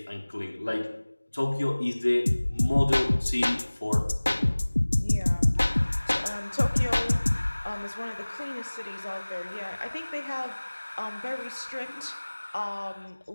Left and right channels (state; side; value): inverted; both; correlation -1.00